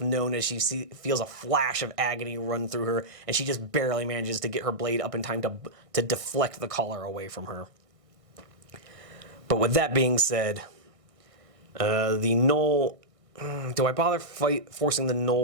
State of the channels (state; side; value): late; left; 1.6 ms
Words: known as she feels a flash of agony run through her, and she just barely manages to get her blade up in time to deflect the collar away from her. But with that being said, the Null... Do I bother forcing the